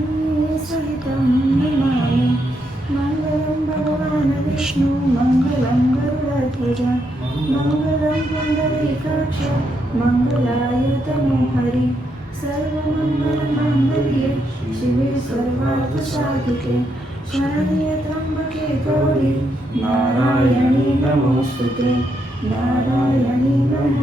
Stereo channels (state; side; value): normal; both; correlation 0.79